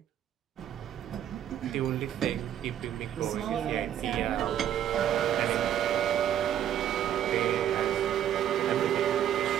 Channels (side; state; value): left; quieter; 10.5 dB